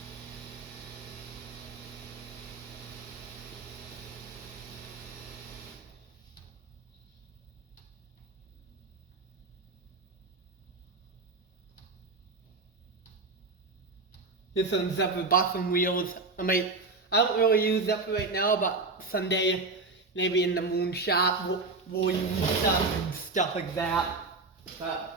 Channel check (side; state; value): left; quieter; 3.7 dB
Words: Here's some Zephyr bottom wheels. I don't really use Zephyr right now, but someday, maybe in the moon shop, we'll use stuff and stuff like that.